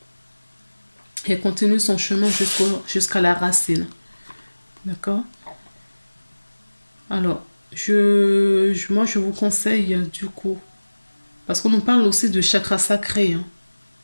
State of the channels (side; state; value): both; inverted; correlation -1.00